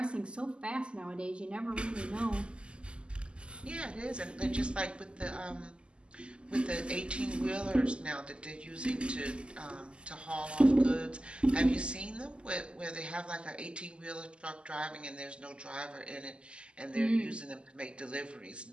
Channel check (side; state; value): left; late; 0.052 ms